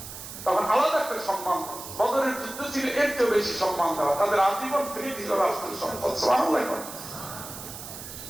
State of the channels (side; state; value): right; noise; hiss, 11 dB below the sound